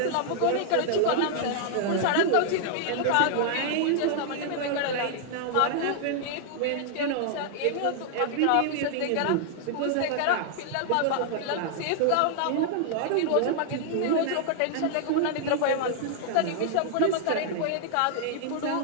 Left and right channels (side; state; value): both; different; correlation -0.01